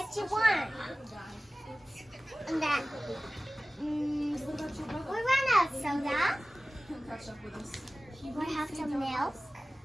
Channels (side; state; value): both; normal; correlation 0.97